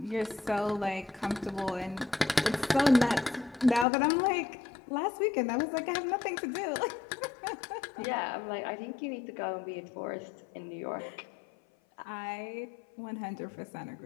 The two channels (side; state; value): right; drops out; at 3.9 s